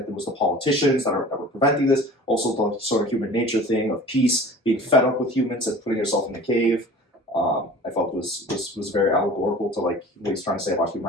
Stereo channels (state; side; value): normal; both; correlation 0.43